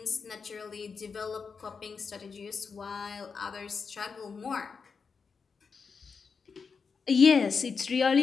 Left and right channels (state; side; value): quieter; right; 5.4 dB